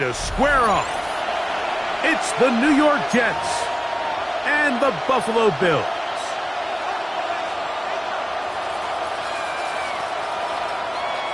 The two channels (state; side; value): identical; both; correlation 1.00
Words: square off. It's the New York Jets and the Buffalo Bills.